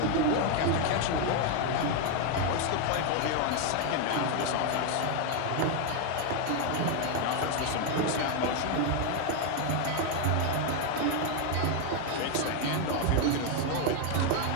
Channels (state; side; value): different; both; correlation 0.01